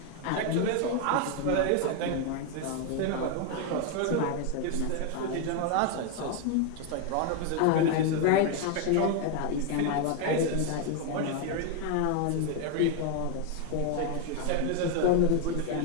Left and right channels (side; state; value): both; different; correlation 0.01